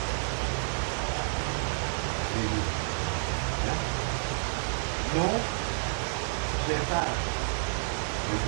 Ini. Ya. No kereta.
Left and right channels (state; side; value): silent; left; digital silence